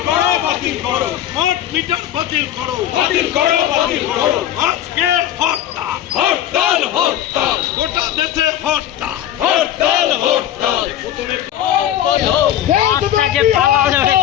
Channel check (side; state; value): right; quieter; 11.6 dB